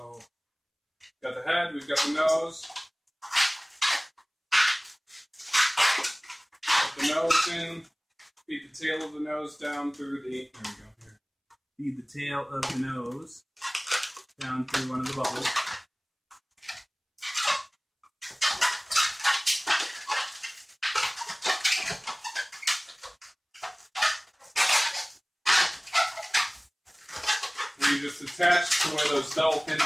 got the head, we've got the nose. Put the nose in, feed the tail of the nose down through the, there we go, here. Feed the tail of the nose down through one of the bubbles. And you just attach to where those double pinch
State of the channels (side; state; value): both; identical; correlation 1.00